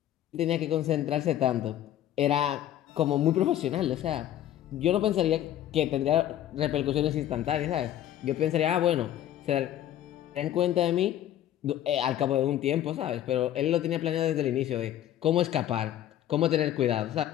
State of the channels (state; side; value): quieter; right; 11.9 dB